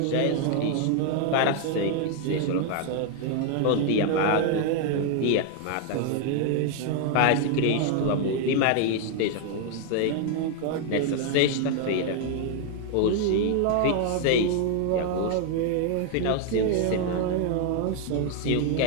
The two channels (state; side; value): different; both; correlation 0.00